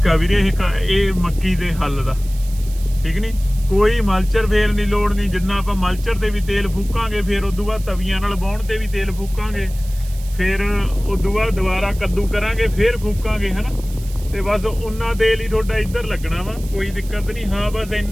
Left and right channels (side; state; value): right; noise; hiss, 19 dB below the sound